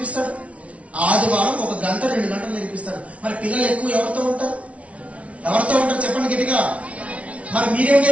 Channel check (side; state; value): left; late; 0.064 ms